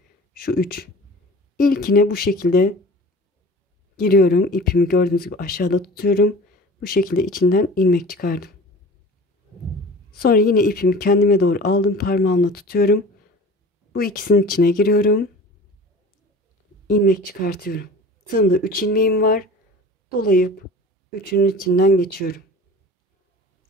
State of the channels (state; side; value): normal; both; correlation 0.40